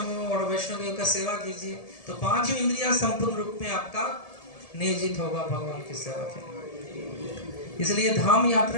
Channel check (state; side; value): late; right; 1.7 ms